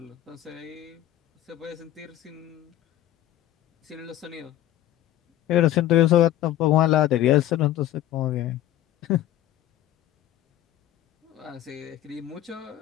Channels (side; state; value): right; quieter; 13.3 dB